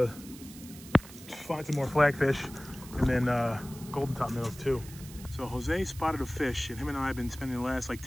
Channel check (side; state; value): right; noise; hiss, 17 dB below the sound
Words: find some more flagfish, and then golden top minnows too. So Jose spotted a fish, and him and I have been spending the last like